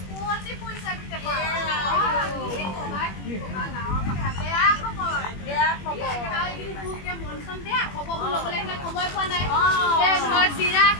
পইচা দিতে পাৰা বেয়া খবৰ মন চন বেয়া খবৰ ল'বলৈ আহিলে সময় পোৱা নাই ধৰ চিৰা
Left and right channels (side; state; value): right; late; 21 ms